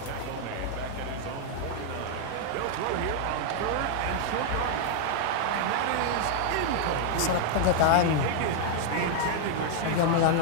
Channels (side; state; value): both; different; correlation -0.01